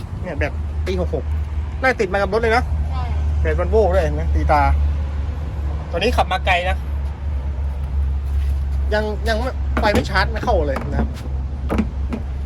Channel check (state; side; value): identical; both; correlation 1.00